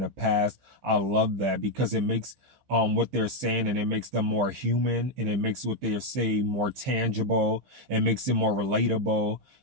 past. I love that, because it makes what they're saying, and it makes them more human, and it makes what they're saying more tangible, and makes it more relatable.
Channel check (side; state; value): left; late; 15 ms